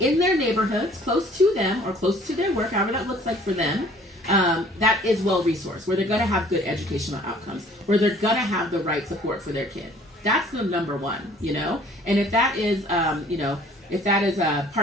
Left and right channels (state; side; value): normal; both; correlation 0.54